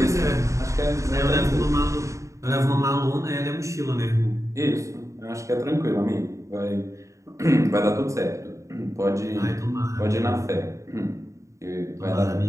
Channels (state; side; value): late; left; 0.15 ms